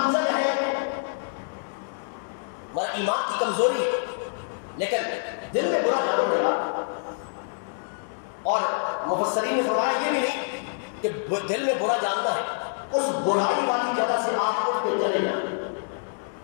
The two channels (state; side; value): silent; right; digital silence